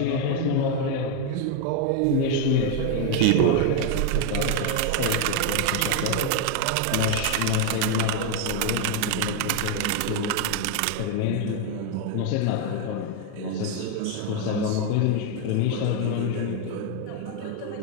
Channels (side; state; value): both; different; correlation 0.01